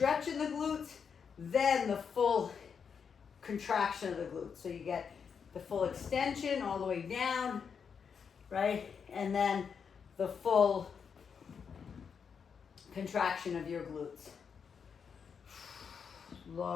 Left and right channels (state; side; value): quieter; right; 6.5 dB